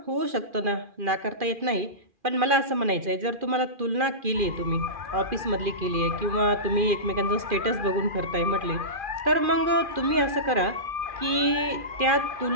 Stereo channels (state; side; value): late; left; 2.4 ms